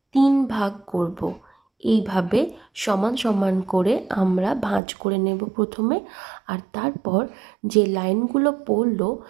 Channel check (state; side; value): drops out; left; at 4.8 s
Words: 3 ভাগ করব। এইভাবে সমান সমান করে আমরা ভাঁজ করে নেব প্রথমে, আর তারপর যে লাইনগুলো পড়লো